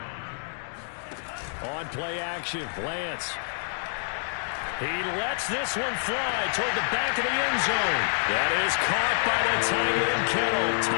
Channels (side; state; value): right; silent; digital silence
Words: On play action, Lance. He lets this one fly toward the back of the end zone. That is caught by the tight end Kittle.